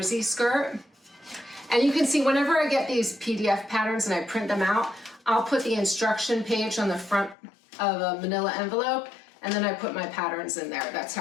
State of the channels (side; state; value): right; drops out; at 7.4 s